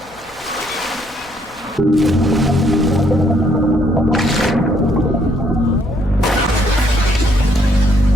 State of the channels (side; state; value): both; normal; correlation 0.69